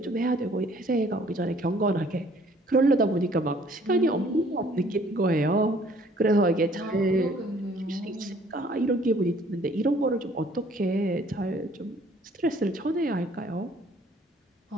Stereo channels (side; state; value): both; normal; correlation 0.58